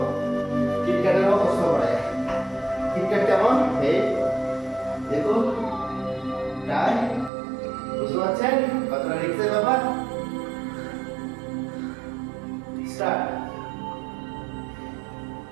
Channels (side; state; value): left; drops out; at 7.3 s